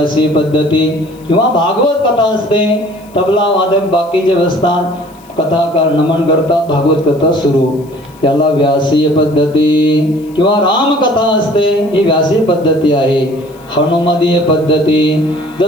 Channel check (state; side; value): noise; left; hiss, 28 dB below the sound